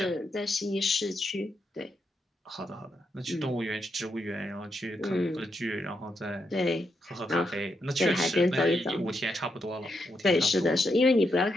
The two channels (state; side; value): normal; both; correlation 0.82